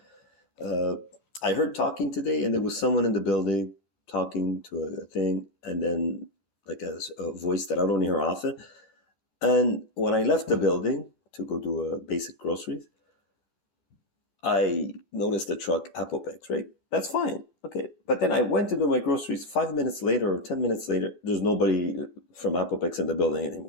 I heard talking today, and there was someone in the building talking to a thing, and then like a voice that I don't hear often. And when I left the building to go do basic groceries, I noticed the truck Apopex, right? That's fine. Okay. But then I went to do my groceries 5 minutes later or 10 minutes later. There's nobody from Apopex in the building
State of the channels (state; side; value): late; right; 14 ms